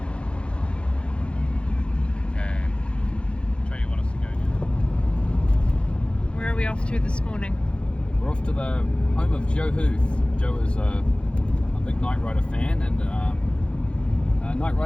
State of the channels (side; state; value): right; late; 0.057 ms